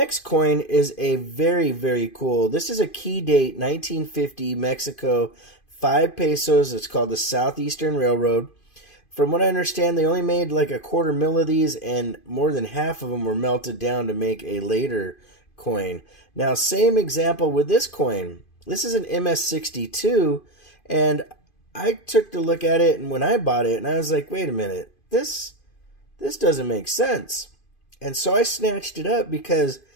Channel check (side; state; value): right; late; 2.5 ms